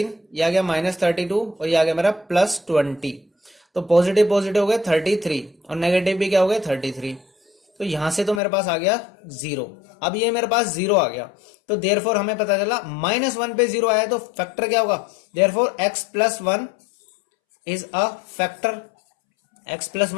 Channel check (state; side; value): drops out; right; at 8.4 s